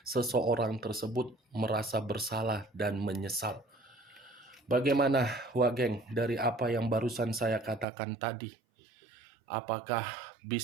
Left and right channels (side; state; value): left; drops out; at 7.9 s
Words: seseorang tersebut merasa bersalah dan menyesal. Bagaimana Wageng dari apa yang barusan saya katakan tadi? Apakah